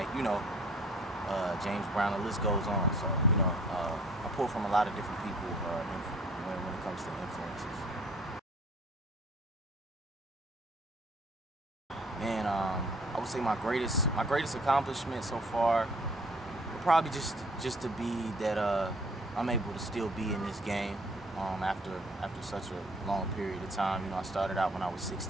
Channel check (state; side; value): normal; both; correlation 0.56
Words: you know, James Brown, the list goes on. So, you know, I pull from a lot of different people when it comes to influences. Man, I would say my greatest accomplishment so far would probably just to be that I'm able to still be in this game after such a long period of time. You know, I started out when I was